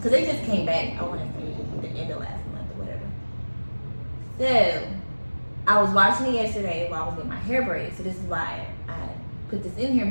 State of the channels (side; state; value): both; inverted; correlation -1.00